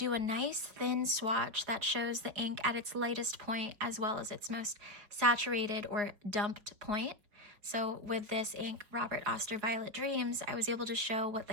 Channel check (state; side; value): late; left; 4.8 ms